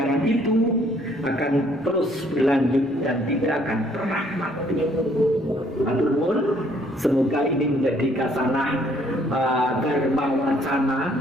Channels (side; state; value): both; normal; correlation 0.64